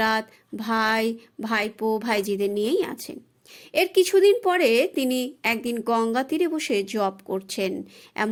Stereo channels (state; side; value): identical; both; correlation 1.00